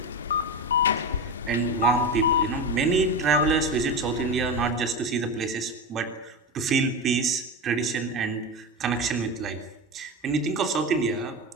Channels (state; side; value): normal; both; correlation 0.20